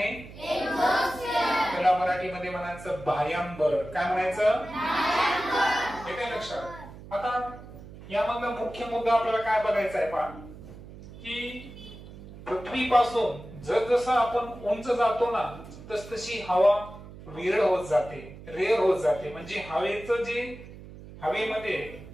त्याला मराठीमध्ये म्हणायचं बाह्यांबर. काय म्हणायचं? हे काय लक्षात? आता यामधला मुख्य मुद्दा आपल्याला काय बघायचा आहे पहा, की पृथ्वीपासून जसजसं आपण उंच जातो ना तसतशी हवा विरळ होत जाते, रेअर होत जाते. म्हणजे हवेचं जे हवेमध्ये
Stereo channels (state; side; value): noise; right; hum, 16 dB below the sound